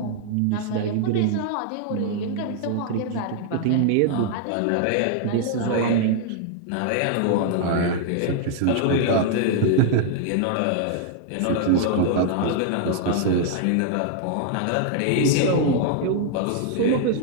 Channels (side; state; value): both; different; correlation -0.01